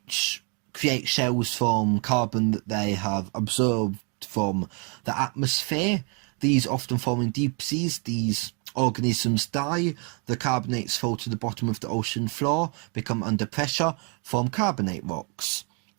create shells from carbon that they have absorbed from the atmosphere. These often form in deep seas. These organisms die, the carbonates fall to the bottom of the ocean floor, become under pressure, form carbonate rocks.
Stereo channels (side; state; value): left; quieter; 36.1 dB